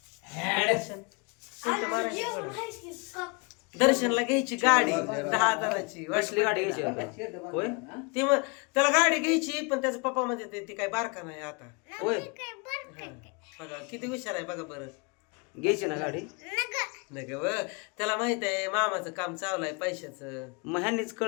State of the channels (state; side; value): quieter; right; 31.7 dB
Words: दर्शनला घ्यायची गाडी 10,000ची. कसली गाडी घ्यायची आता? होय ती मग त्याला गाडी घ्यायची, पण त्याचा पप्पा म्हणजे ती काय बारका नाही आता. होय बघा किती हुशार आहे बघा बरं. घ्यायची ना गाडी. नाही व त्याला माहित आहे मामाचं काम चालू आहे पैशाचं. मग ह्यांनीच